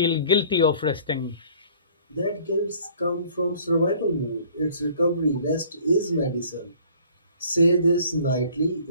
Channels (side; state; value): both; inverted; correlation -0.54